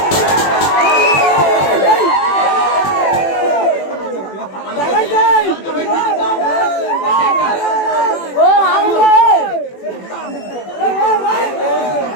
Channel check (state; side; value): late; right; 21 ms